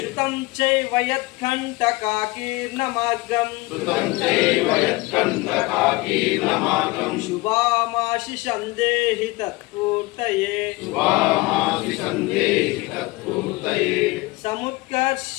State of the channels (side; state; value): right; quieter; 22.5 dB